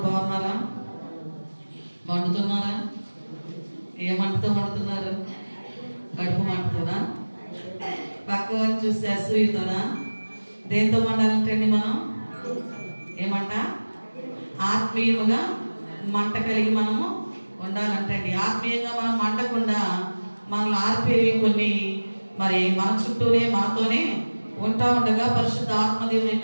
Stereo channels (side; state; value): both; inverted; correlation -1.00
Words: బాగున్నారా? వండుతున్నారా? ఏ మంటతో వండుతున్నారు? కడుపు మంటతోనా? పక్క వాళ్ళు చూస్తే అసూయతోనా? దేంతో వండాలంటండి మనం? ఏమంట? ఆత్మీయముగా మంట కలిగి మనము ఉండాలంటండి. ఆత్మీయంగా మనం మండకుండా మనల్ని ఆర్పేవి కొన్ని మరి మన చుట్టూనే మనతోనే ఉంటా ఉండగా పరిశుద్ధ ఆత్మదేవుని